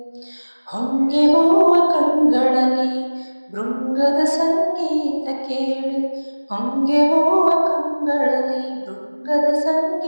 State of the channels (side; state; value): both; inverted; correlation -1.00